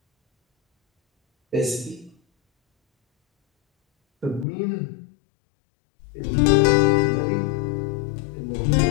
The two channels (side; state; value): right; drops out; at 4.5 s